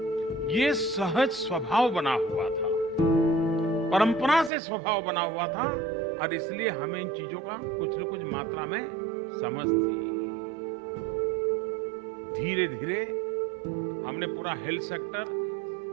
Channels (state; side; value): drops out; left; at 4.5 s